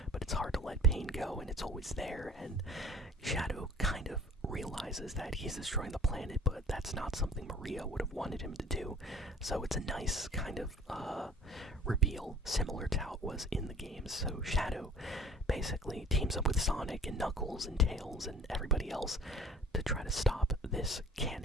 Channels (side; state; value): both; normal; correlation 0.48